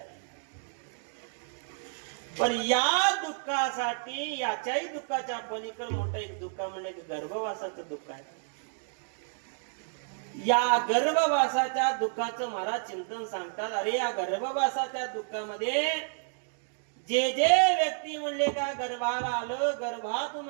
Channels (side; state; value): left; silent; digital silence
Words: पण या दुःखासाठी याच्याही दुःखाच्या पलीकडे मोठं एक दुःख म्हणजे गर्भवासाचं दुःख आहे. या गर्भवासाच्या दुःखाचं महाराज चिंतन सांगतात. अरे या गर्भवासाच्या दुःखामध्ये जे जे व्यक्ती म्हणले का गर्भाला आलं, गर्भात